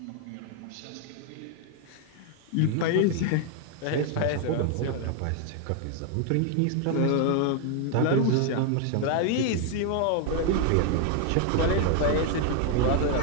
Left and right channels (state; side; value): different; both; correlation 0.00